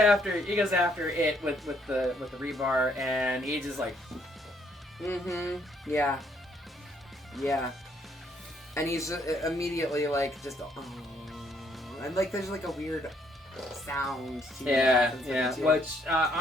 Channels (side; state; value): both; normal; correlation 0.69